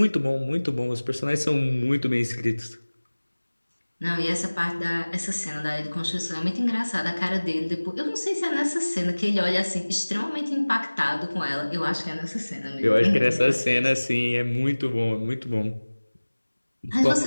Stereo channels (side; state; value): both; inverted; correlation -1.00